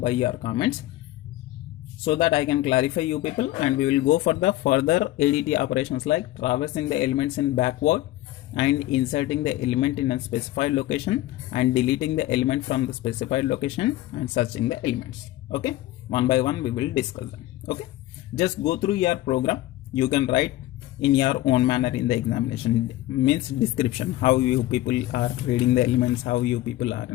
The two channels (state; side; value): quieter; right; 15.9 dB